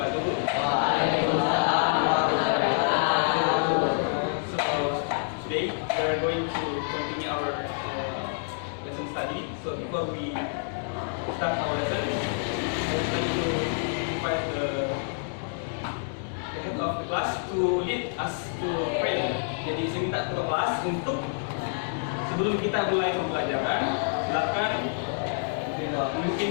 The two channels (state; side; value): silent; right; 60 dB below the other